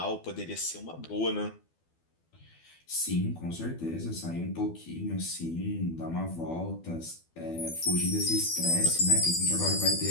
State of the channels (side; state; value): right; late; 12 ms